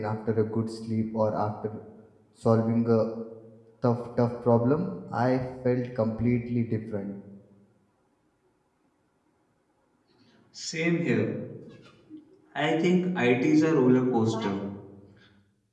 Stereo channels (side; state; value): both; identical; correlation 1.00